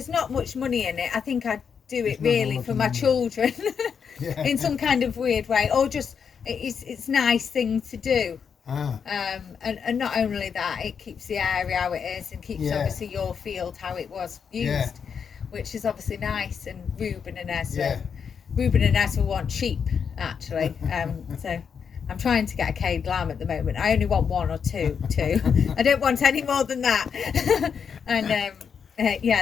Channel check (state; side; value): quieter; right; 6.7 dB